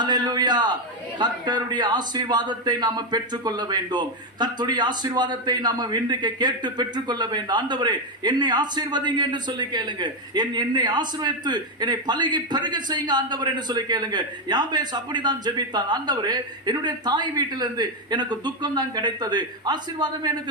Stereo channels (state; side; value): normal; both; correlation 0.06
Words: கர்த்தருடைய ஆசீர்வாதத்தை நாம பெற்றுக்கொள்ள வேண்டும். கர்த்தருடைய ஆசீர்வாதத்தை நாம இன்றைக்கு கேட்டு பெற்றுக்கொள்ள வேண்டும். ஆண்டவரே என்னை ஆசீர்வதிங்க என்று சொல்லி கேளுங்க. என்னை ஆசீர்வதித்து என்னை பலகி பெருக செய்யுங்க ஆண்டவர் என்று சொல்லி கேளுங்க. யாபேஸ் அப்படிதான் ஜெபித்தான். ஆண்டவரே என்னுடைய தாய் வீட்டிலிருந்து எனக்கு துக்கம் தான் கிடைத்தது, ஆசீர்வாதம்